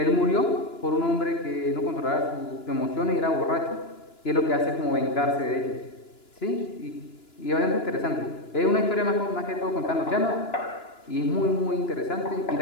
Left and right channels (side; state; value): right; late; 2.9 ms